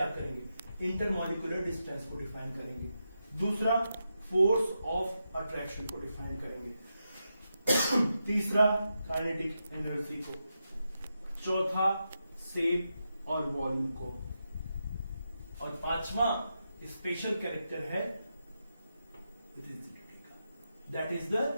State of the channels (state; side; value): inverted; both; correlation -0.87